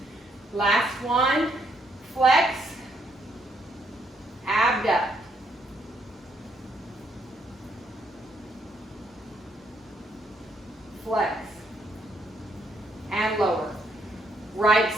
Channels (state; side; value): normal; both; correlation 0.73